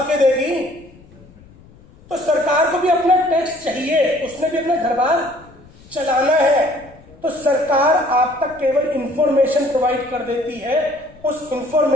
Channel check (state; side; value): noise; left; rumble, 24 dB below the sound